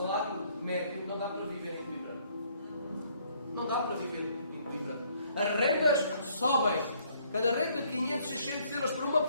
médio, não dá para viver em Coimbra. Não dá para viver em Coimbra. As rendas sobem. Cada renda de 500, 600 euros por uma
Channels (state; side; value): inverted; both; correlation -0.65